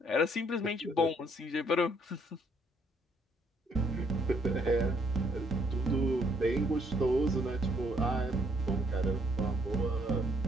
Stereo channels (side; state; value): both; normal; correlation 0.68